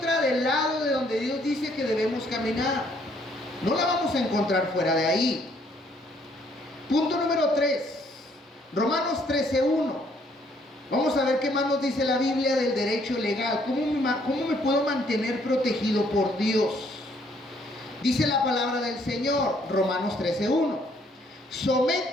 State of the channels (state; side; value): normal; both; correlation 0.66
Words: del lado de donde Dios dice que debemos caminar. No la vamos a encontrar fuera de ahí. Punto número 3. Romanos 13:1. Vamos a ver qué más nos dice la Biblia del derecho legal. ¿Cómo me puedo mantener protegido por Dios? Dice la palabra del Señor, Romanos 13:1.